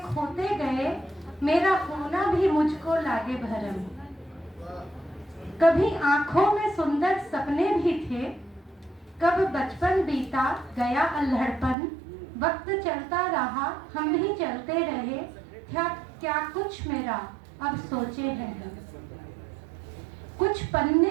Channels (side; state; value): left; drops out; at 11.8 s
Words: खोते गए, मेरा होना भी मुझको लागे भरम। कभी आंखों में सुंदर सपने भी थे, कब बचपन बीता गया अल्हड़पन, वक्त चलता रहा हम भी चलते रहे, क्या कुछ मेरा अब सोचे हैं। कुछ